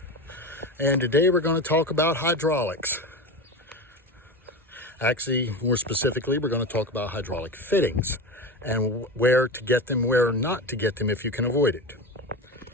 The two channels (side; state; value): both; normal; correlation 0.25